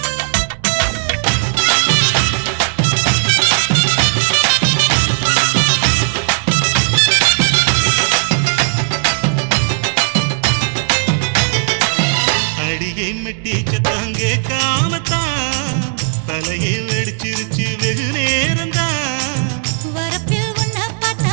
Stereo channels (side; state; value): left; silent; digital silence